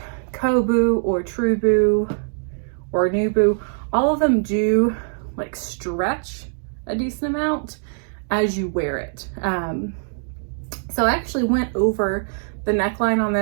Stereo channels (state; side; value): silent; left; digital silence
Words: Coboo or Truboo or Nuboo, all of them do like stretch a decent amount as you wear it. So I actually went over the neckline on